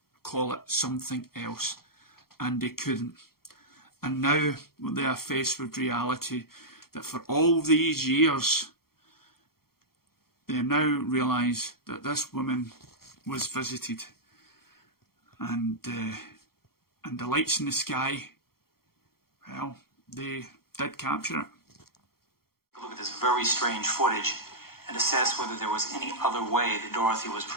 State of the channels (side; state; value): right; late; 0.94 ms